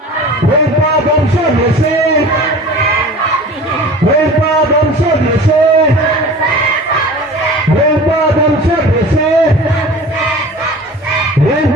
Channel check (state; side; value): normal; both; correlation 0.40